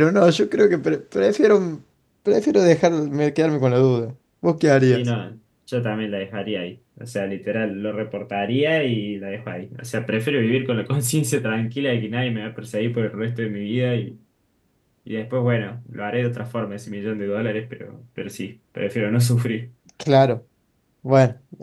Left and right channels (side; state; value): both; identical; correlation 1.00